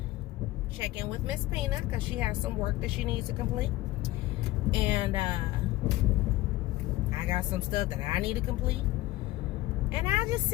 check in with Miss Peanut because she has some work that she needs to complete. And I got some stuff that I need to complete. And I'll just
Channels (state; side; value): quieter; right; 17.3 dB